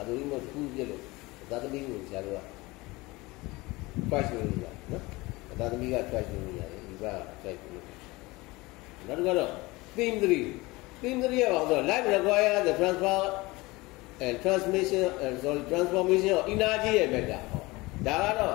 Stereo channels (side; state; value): right; quieter; 22.2 dB